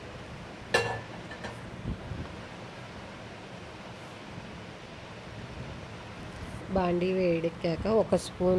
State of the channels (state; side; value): identical; both; correlation 1.00